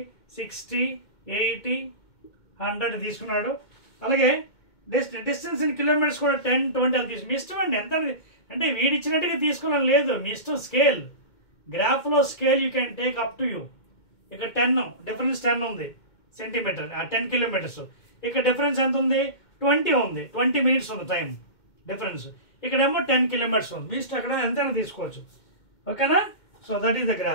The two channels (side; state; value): right; late; 2.2 ms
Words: 60 80 100 తీసుకున్నాడు. అలాగే డిస్టెన్స్ ఇన్ కిలోమీటర్స్ కూడా 10 20 అలా తీసుకు. మీ ఇష్టం అండి ఎంత, అంటే వీడి ఇచ్చినట్టుగా తీసుకోవడం లేదు, మీ ఇష్టం. స్కేల్, గ్రాఫ్లో scale you can take up to you. ఇక్కడ 10 డిఫరెన్స్ 10 ఉంది సెంటీమీటర్, 10 కిలోమీటర్స్. ఇక్కడ డిఫరెన్స్ ఎంత ఉంది? 20 ఉంది, 20 మినిట్స్ ఉంది టైం డిఫరెన్స్. ఇక్కడేమో 10 కిలోమీటర్స్ ఉంది. మీ ఇష్టం అక్కడ ఎంతైనా తీసుకోవచ్చు. ఓకేనా? So that is the